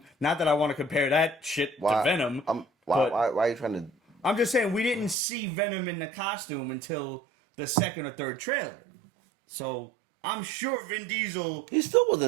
Not that I want to compare that shit to Venom. Why are you trying to? I'm just saying we didn't see Venom in the costume until the second or third trailer. So I'm sure Vin Diesel. He still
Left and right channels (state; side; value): drops out; left; at 5.2 s